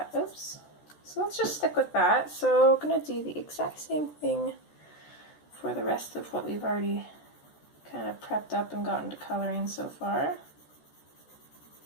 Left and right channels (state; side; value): late; right; 14 ms